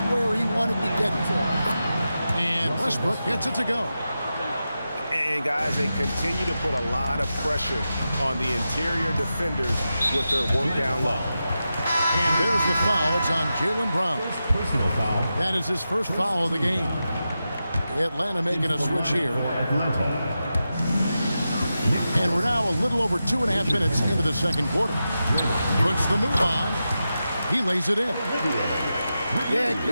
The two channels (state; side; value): inverted; both; correlation -0.90